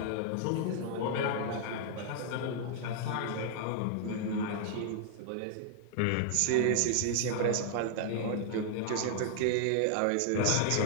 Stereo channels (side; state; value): both; different; correlation 0.00